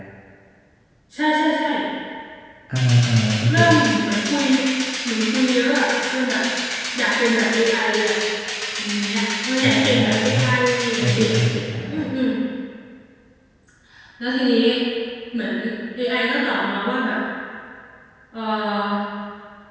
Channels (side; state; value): both; identical; correlation 1.00